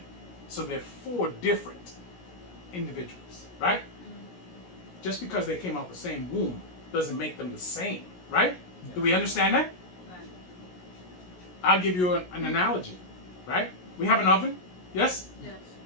So they're 4 different individuals, right? Just because they came out the same womb doesn't make them the same, right? Yeah. Do we understand that? Right. I'll give you an analogy, right? We have an oven, yes? Yes.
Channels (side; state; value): right; late; 17 ms